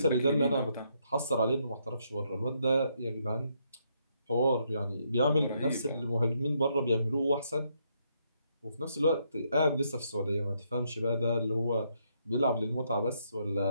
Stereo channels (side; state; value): both; inverted; correlation -0.75